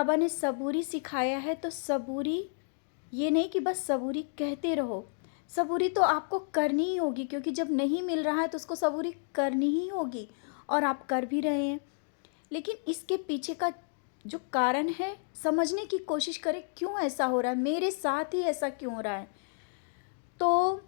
ने सबूरी सिखाया है तो सबूरी ये नहीं कि बस सबूरी कहते रहो। सबूरी तो आपको करनी ही होगी, क्योंकि जब नहीं मिल रहा है तो उसको सबूरी करनी ही होगी, और आप कर भी रहे हैं। लेकिन इसके पीछे का जो कारण है, समझने की कोशिश करें, क्यों ऐसा हो रहा है, मेरे साथ ही ऐसा क्यों हो रहा है। तो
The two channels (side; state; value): right; silent; digital silence